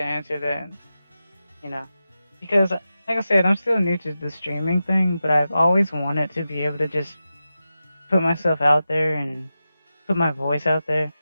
answer that. Because like I said, I'm still new to the streaming thing, but I've always wanted to be able to just put myself out there and put my voice out there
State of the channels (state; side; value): inverted; both; correlation -0.92